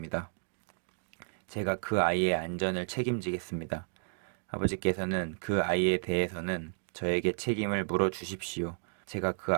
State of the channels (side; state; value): left; silent; digital silence